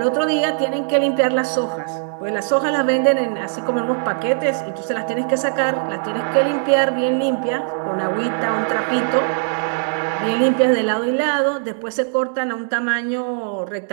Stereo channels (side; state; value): left; silent; digital silence